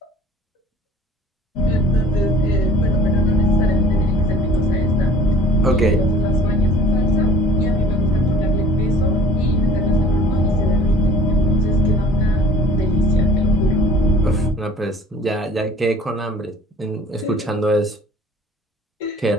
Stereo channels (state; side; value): normal; both; correlation 0.50